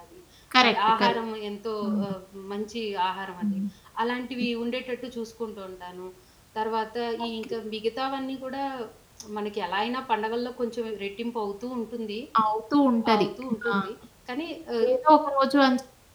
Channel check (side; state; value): both; identical; correlation 1.00